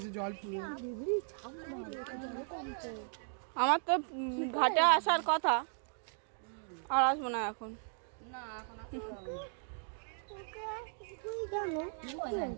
জল পুরো। আমার তো ঘাটে আসার কথা, আর আসবো না এখন।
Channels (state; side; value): silent; left; digital silence